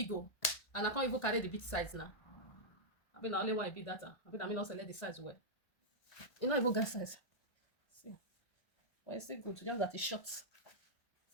oh. And I can't even carry the big size now. I mean, I only want a big data. I mean, also let the size well. You know, even get size. See. But it's still good. Just that it's short.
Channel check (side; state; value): right; late; 1.5 ms